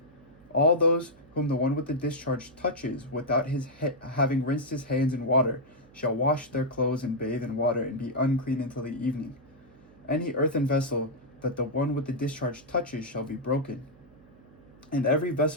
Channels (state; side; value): noise; right; hum, 25 dB below the sound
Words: All those whom the one with the discharge touches without his having rinsed his hands in water shall wash their clothes and bathe in water and be unclean until the evening. Any earthen vessel that the one with the discharge touches shall be broken, and every